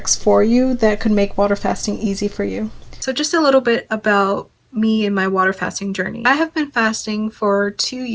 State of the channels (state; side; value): identical; both; correlation 1.00